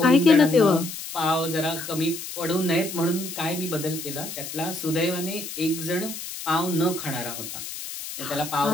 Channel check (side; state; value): left; noise; hiss, 9 dB below the sound